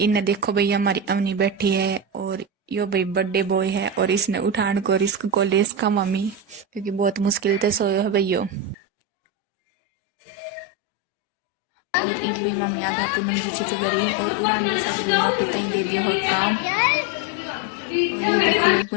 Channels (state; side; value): drops out; right; at 8.8 s